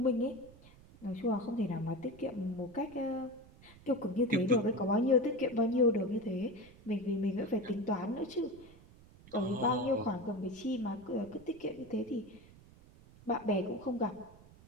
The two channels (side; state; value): right; noise; rumble, 22 dB below the sound